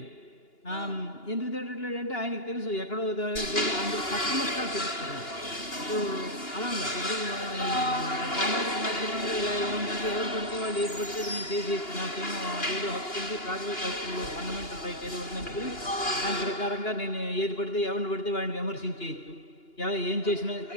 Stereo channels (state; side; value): late; right; 2.9 ms